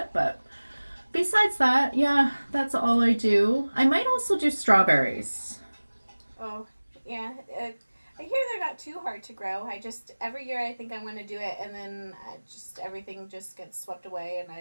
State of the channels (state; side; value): inverted; both; correlation -1.00